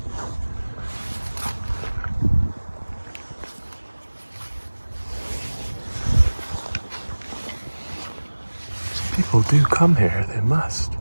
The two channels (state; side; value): inverted; both; correlation -1.00